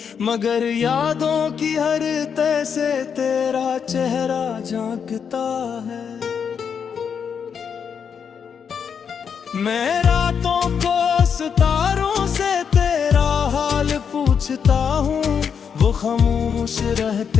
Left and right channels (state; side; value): quieter; right; 7.0 dB